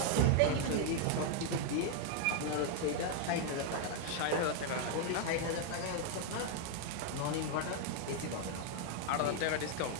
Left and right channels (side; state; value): both; different; correlation 0.00